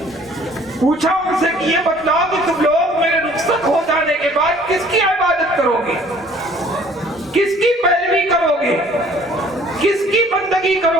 پوچھا ان سے کہ یہ بتلاؤ کہ تم لوگ میرے رخصت ہو جانے کے بعد کس کی عبادت کرو گے، کس کی پیروی کرو گے، کس کی بندگی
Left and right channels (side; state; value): both; normal; correlation 0.55